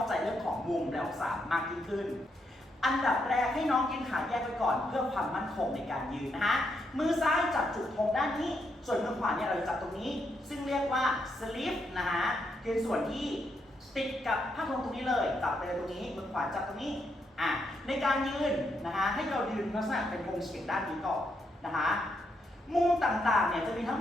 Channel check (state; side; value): normal; both; correlation 0.79